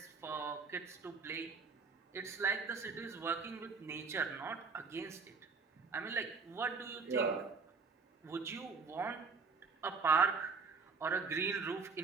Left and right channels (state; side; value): quieter; left; 4.9 dB